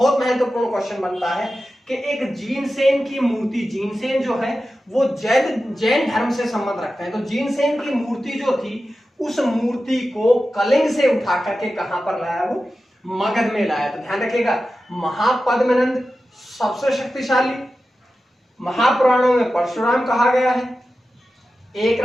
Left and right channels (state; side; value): normal; both; correlation 0.93